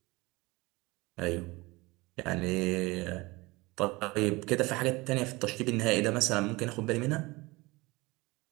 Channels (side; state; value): left; quieter; 22.7 dB